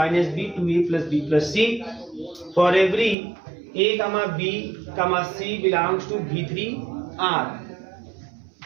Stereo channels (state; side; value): drops out; left; at 3.2 s